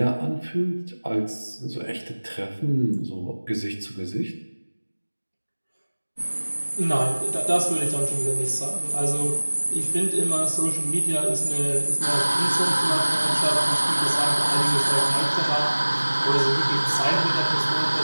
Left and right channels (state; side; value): inverted; both; correlation -1.00